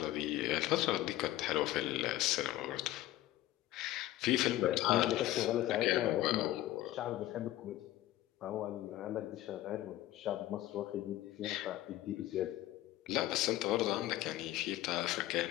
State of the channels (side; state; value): right; quieter; 15.1 dB